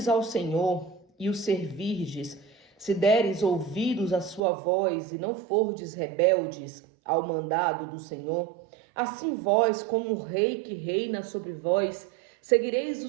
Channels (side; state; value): left; drops out; at 4.4 s